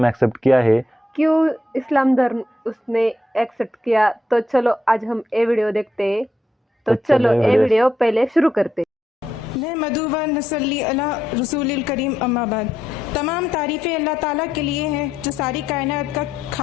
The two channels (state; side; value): normal; both; correlation 0.80